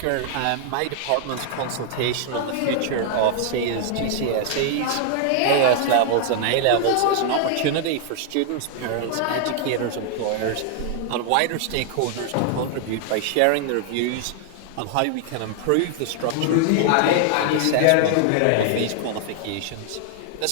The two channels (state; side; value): different; both; correlation -0.01